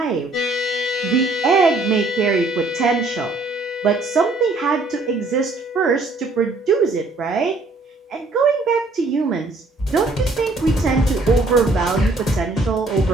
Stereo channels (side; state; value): left; quieter; 3.2 dB